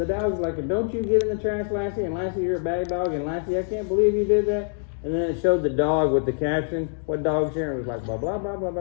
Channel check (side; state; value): right; silent; 60 dB below the other